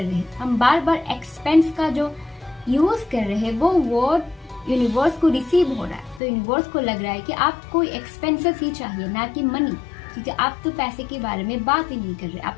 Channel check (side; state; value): right; drops out; at 6.2 s